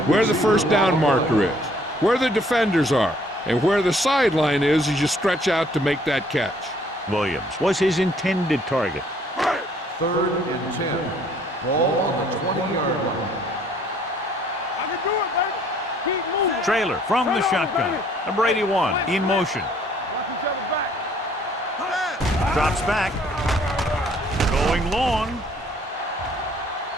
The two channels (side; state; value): both; normal; correlation 0.61